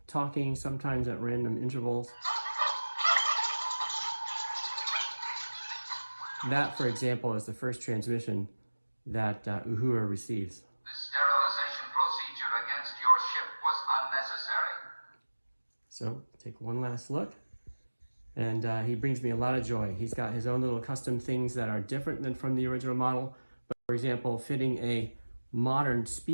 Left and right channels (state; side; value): inverted; both; correlation -1.00